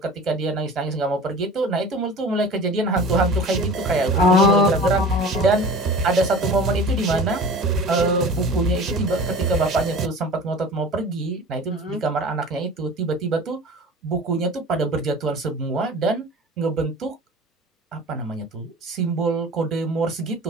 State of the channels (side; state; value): both; normal; correlation 0.39